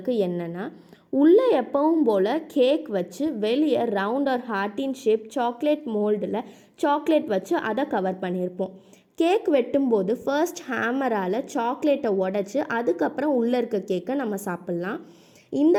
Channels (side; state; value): both; identical; correlation 1.00